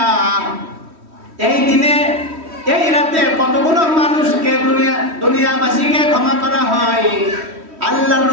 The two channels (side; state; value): left; late; 3.1 ms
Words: এই দিনে এই রাতে কতগুলো মানুষকে দুনিয়াবাসীকে ক্ষমা করা হয়। আল্লাহর